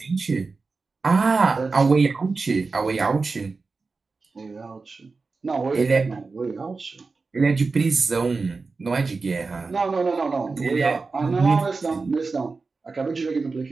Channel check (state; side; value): quieter; left; 4.2 dB